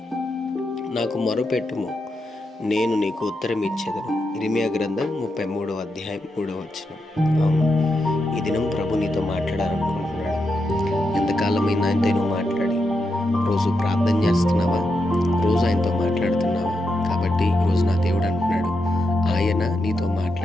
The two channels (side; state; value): both; normal; correlation 0.85